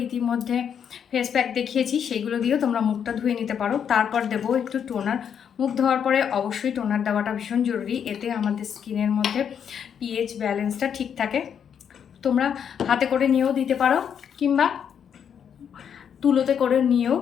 ইতিমধ্যে ফেস প্যাক দেখিয়েছি, সেইগুলো দিয়েও তোমরা মুখটা ধুয়ে নিতে পারো। তারপর দেবো একটু টোনার। মুখ ধোয়ার পরে অবশ্যই টোনার দেওয়াটা ভীষণ জরুরি, এতে আমাদের স্কিনের মধ্যে পিএইচ ব্যালেন্সটা ঠিক থাকে। তোমরা হাতে করে নিয়েও দিতে পারো কিংবা তুলোতে করে নিয়েও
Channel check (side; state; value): right; quieter; 8.0 dB